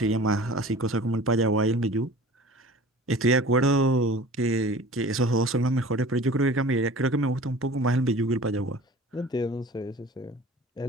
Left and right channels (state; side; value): normal; both; correlation 0.42